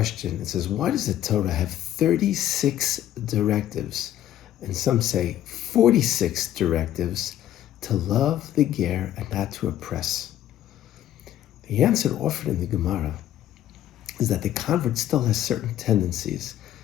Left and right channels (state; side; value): quieter; right; 12.0 dB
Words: It says, why does the Torah have 36 directives, and some say 46 directives, to love the Ger and not to oppress? The answer offered in the Gemara is that the convert still has certain tendencies,